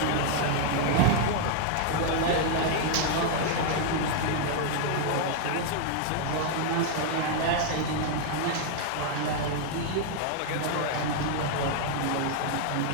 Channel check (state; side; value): different; both; correlation 0.00